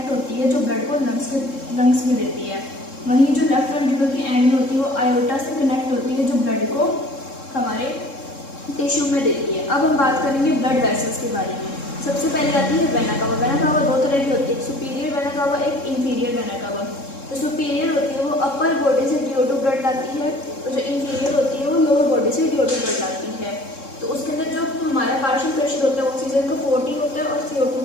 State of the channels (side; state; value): right; late; 3.7 ms